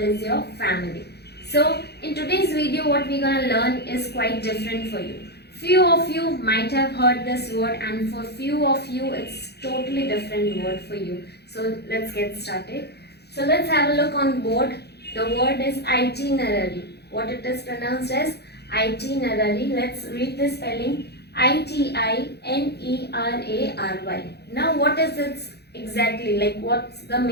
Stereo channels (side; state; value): right; late; 0.48 ms